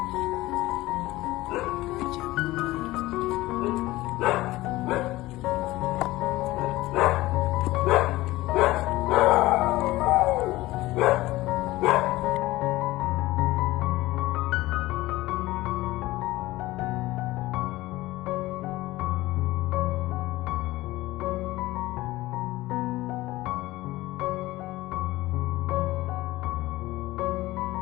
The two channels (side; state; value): right; quieter; 18.2 dB